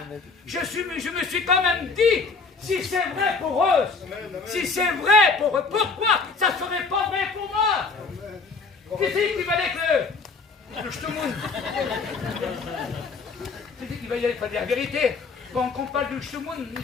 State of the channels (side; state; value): right; quieter; 4.4 dB